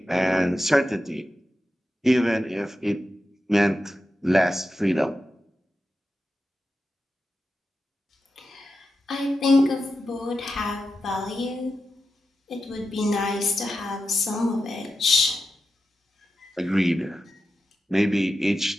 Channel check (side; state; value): both; normal; correlation 0.90